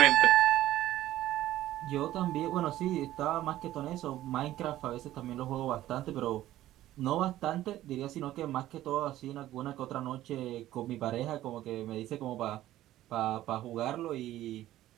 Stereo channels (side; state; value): left; quieter; 14.2 dB